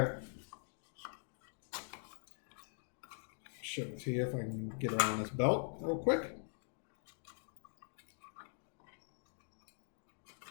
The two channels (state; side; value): silent; right; digital silence